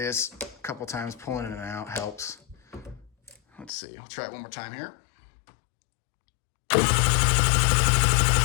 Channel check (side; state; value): right; drops out; at 3.7 s